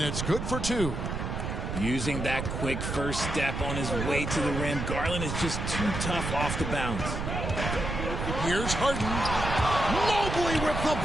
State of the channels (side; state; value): right; noise; rumble, 3 dB below the sound